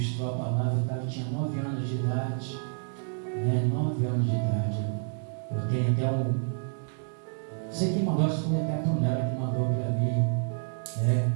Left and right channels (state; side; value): silent; left; 59 dB below the other